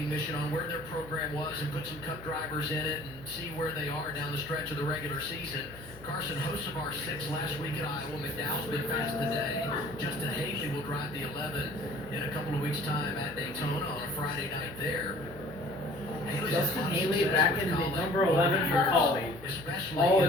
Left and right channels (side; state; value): left; noise; hum, 20 dB below the sound